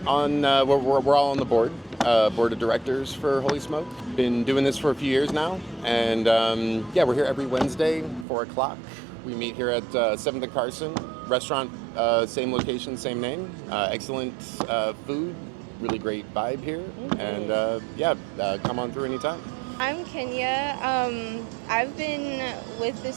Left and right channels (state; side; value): drops out; left; at 8.2 s